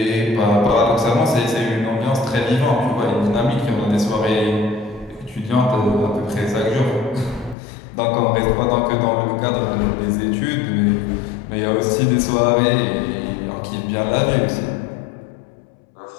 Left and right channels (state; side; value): drops out; right; at 7.6 s